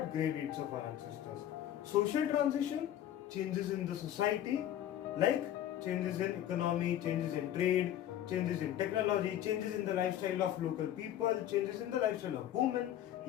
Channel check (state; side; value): quieter; right; 11.6 dB